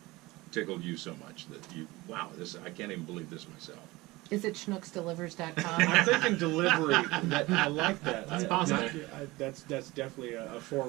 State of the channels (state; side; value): quieter; left; 20.9 dB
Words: tickled you so much that wow, I can't even believe this myself. Is it schnooksdelivers.com? I'm thinking delivery. I like that. That's possible. That's definitely a